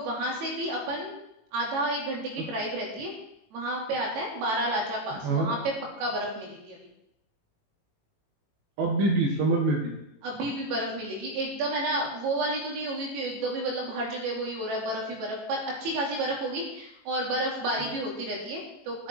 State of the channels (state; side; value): late; left; 18 ms